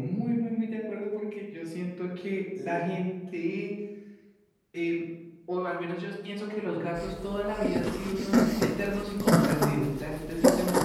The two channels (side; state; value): both; identical; correlation 1.00